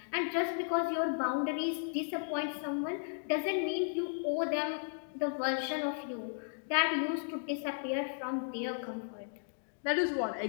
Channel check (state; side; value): silent; right; digital silence